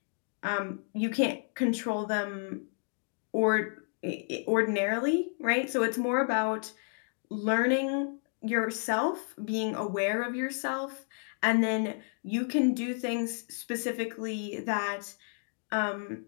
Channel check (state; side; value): silent; right; 57 dB below the other